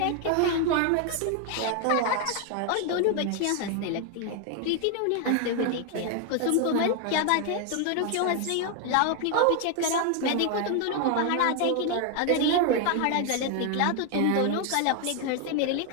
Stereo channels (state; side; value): different; both; correlation 0.01